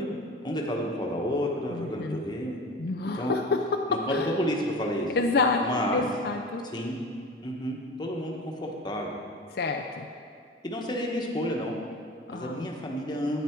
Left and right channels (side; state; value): both; normal; correlation 0.34